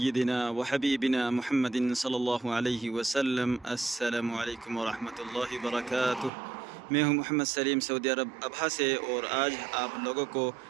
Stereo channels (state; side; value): drops out; left; at 6.3 s